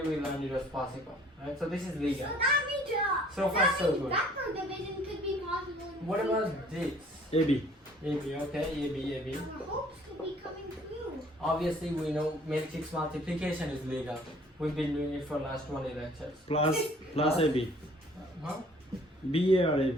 we learned it was possible, right? So this is legal. So that means, So far, so good. vector division could be possible. In What the about future. this? AB. AB, okay, AB. Our hopes could be coming true. Obviously, we know matrix multiplication is legal. We've been doing it for last 20 lectures. Plus AB. Huh? BA or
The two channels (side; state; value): both; normal; correlation 0.56